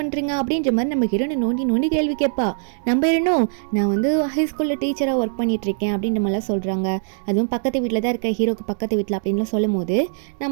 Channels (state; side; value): silent; left; digital silence